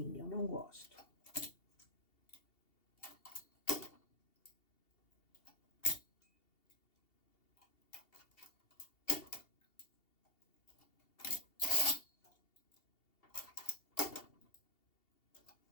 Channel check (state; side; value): late; right; 2.7 ms